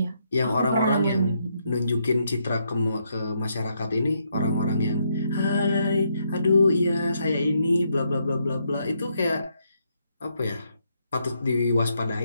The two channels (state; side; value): inverted; both; correlation -0.77